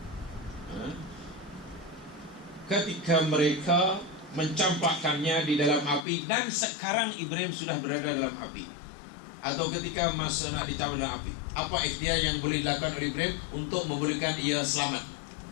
ketika mereka mencampakkannya di dalam api, dan sekarang Ibrahim sudah berada dalam api, atau ketika masa nak dicampak dalam api, apa ikhtiar yang boleh dilakukan oleh Ibrahim untuk membolehkan ia selamat?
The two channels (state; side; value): drops out; right; at 6.1 s